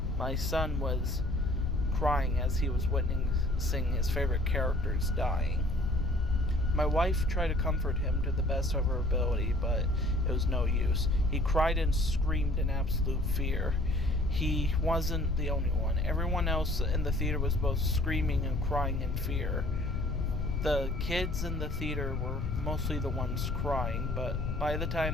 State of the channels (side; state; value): left; noise; rumble, 4 dB below the sound